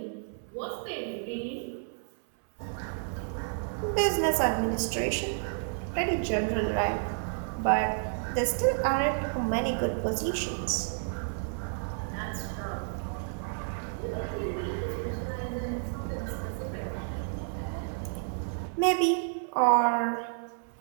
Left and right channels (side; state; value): left; silent; 57 dB below the other